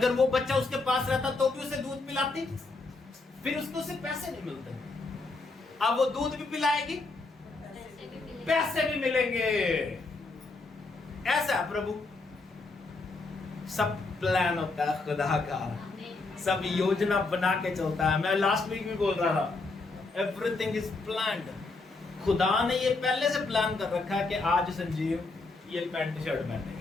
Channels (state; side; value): quieter; right; 3.6 dB